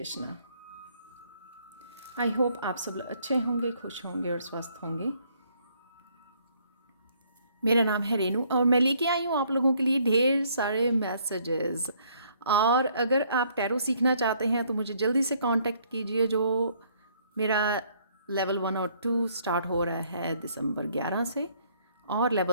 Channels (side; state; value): both; inverted; correlation -0.65